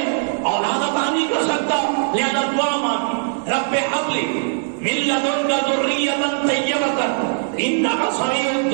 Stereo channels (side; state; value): left; silent; 59 dB below the other